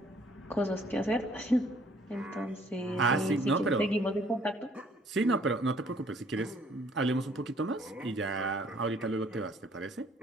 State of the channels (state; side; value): normal; both; correlation 0.60